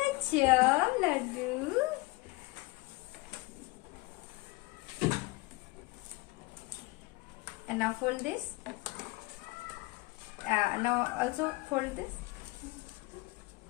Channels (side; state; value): right; quieter; 23.4 dB